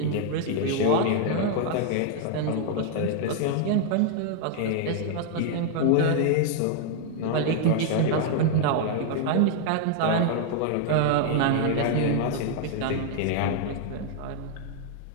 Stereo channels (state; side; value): different; both; correlation 0.00